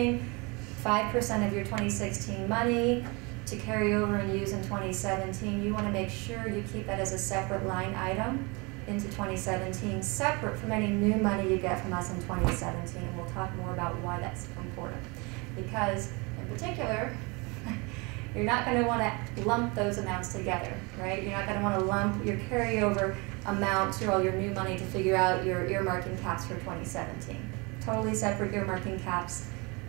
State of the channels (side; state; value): left; quieter; 28.3 dB